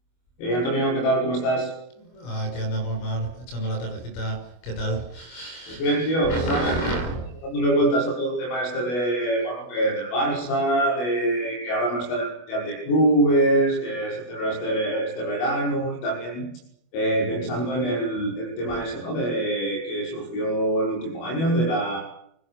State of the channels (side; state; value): right; late; 25 ms